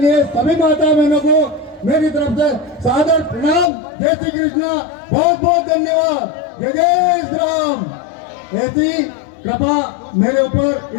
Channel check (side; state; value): right; drops out; at 3.7 s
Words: सभी माता बहनों को मेरी तरफ से सादर प्रणाम। जय श्री कृष्णा, बहुत बहुत धन्यवाद। जय जय श्री राम। ऐसी कृपा मेरे ऊपर,